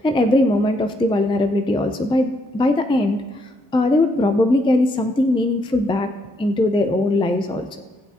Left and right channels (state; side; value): normal; both; correlation 0.75